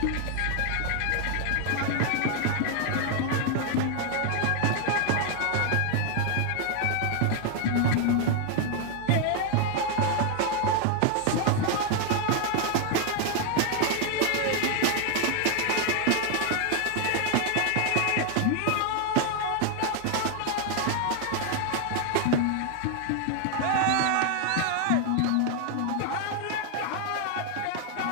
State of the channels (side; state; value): both; different; correlation 0.00